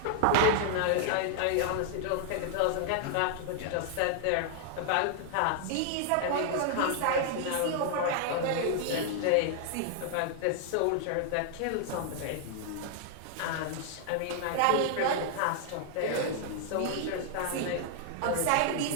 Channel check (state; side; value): different; both; correlation 0.00